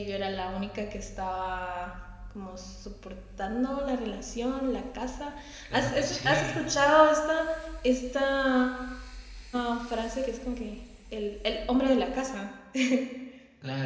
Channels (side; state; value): both; identical; correlation 1.00